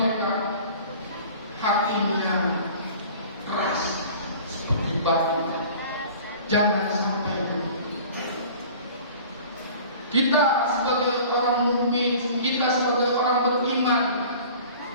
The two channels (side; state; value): both; inverted; correlation -0.44